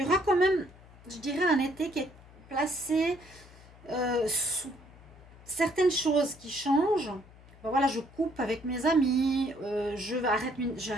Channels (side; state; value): left; noise; hum, 22 dB below the sound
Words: y aura quand même, je dirais, un été qui est placé sous certaines choses qui changent. ben voilà, je coupe avec mes amis,